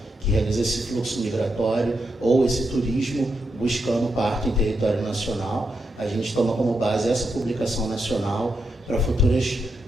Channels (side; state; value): both; normal; correlation 0.83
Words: que realiza esse fluxo migratório ou esse turismo buscando parto em território nacional. A gente toma como base essa publicação nacional para futuros